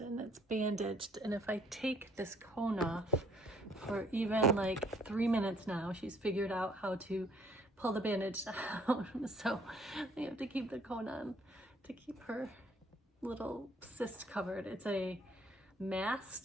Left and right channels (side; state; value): both; normal; correlation 0.62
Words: it's bandaged, and if I take this cone off for even like 3 minutes now, she's figured out how to pull the bandage down. So I have to keep the cone on to keep her little cyst covered. It's a